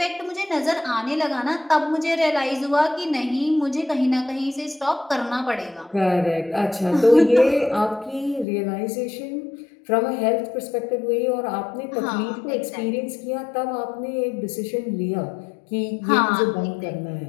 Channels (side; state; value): right; drops out; at 8.5 s